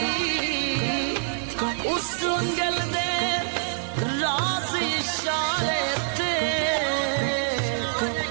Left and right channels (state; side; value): silent; left; 61 dB below the other